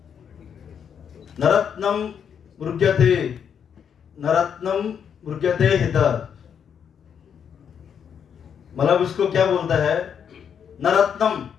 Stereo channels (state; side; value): quieter; right; 7.7 dB